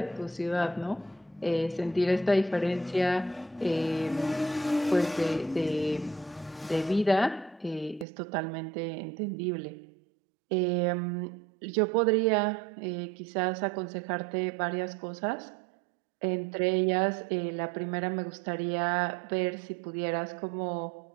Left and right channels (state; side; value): drops out; left; at 8.1 s